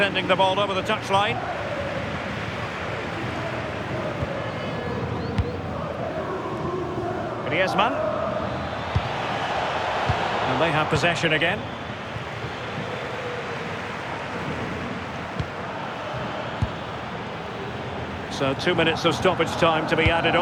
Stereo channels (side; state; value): both; identical; correlation 1.00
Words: the ball over the touchline. Griezmann. And they have possession again. So 2 minutes of stoppage time to be added